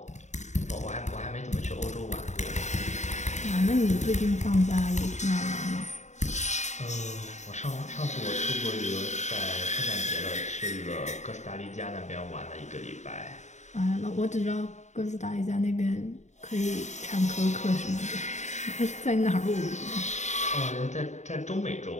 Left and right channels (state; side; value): late; right; 0.34 ms